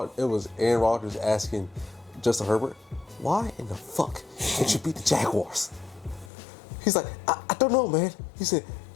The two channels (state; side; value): drops out; right; at 6.3 s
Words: Rodgers asking Justin Herbert, why in the fuck can't you beat the Jaguars? He's like, I don't know, man. He said,